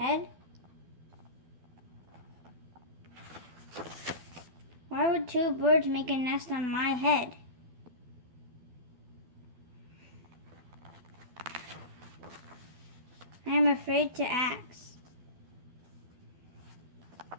Why would two birds make a nest on my head? I am afraid to ask.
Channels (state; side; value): late; left; 12 ms